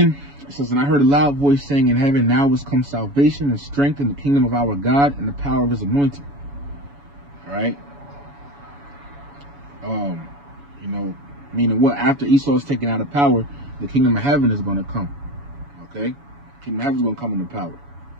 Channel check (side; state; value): left; late; 7.1 ms